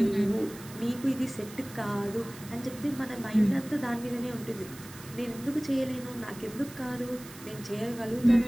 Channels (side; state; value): right; noise; hiss, 17 dB below the sound